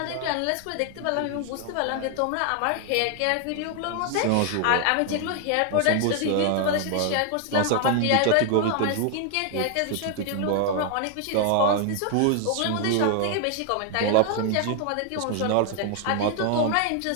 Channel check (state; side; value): different; both; correlation 0.00